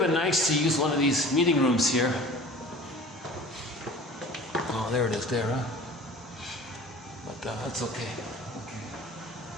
nice to use one of these meeting rooms here. Oh, there it is there, huh? But that's okay.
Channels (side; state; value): both; normal; correlation 0.42